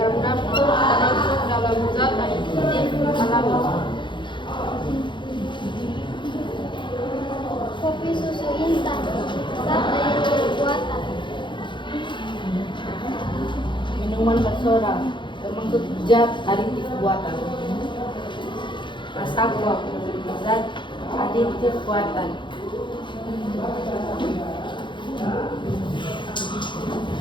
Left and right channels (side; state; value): right; late; 0.23 ms